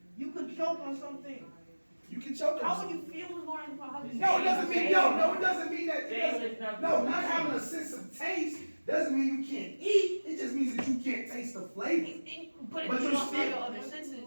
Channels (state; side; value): inverted; both; correlation -1.00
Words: You could choke on something. You can choke on How would something. you feel what's going in your mouth? No, it doesn't mean no. It doesn't mean that. Taste is not No, not having a sense of taste doesn't mean you can't eat. It just means that you can't taste the flavor. But But if you you're lost all still- your other senses,